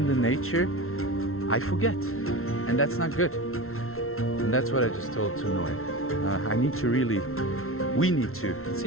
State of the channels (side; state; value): right; late; 0.62 ms